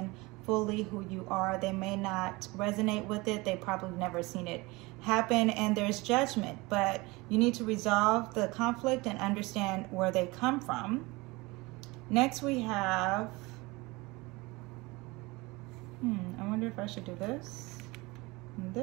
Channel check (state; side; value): quieter; left; 23.4 dB